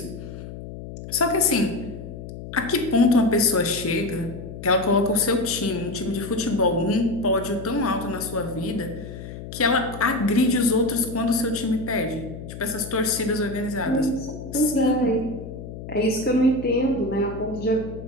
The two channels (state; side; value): noise; left; hum, 11 dB below the sound